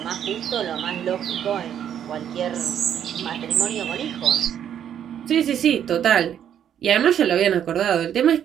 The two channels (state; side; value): quieter; left; 9.5 dB